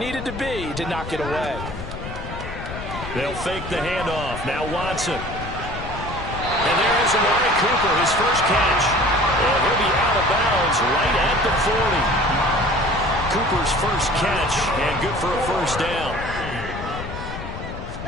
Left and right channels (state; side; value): noise; left; rumble, 9 dB below the sound